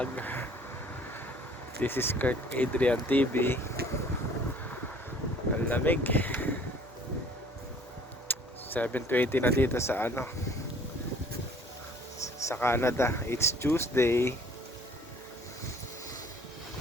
This is Kurt Adrian TV. Ang lamig. 7:20 na dito sa sa Canada. It's Tuesday.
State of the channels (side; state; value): both; normal; correlation 0.53